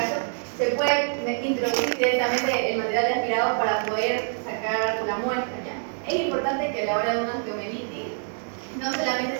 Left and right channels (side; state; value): left; silent; 55 dB below the other